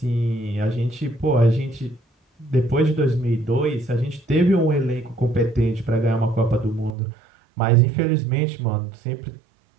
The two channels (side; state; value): left; drops out; at 7.0 s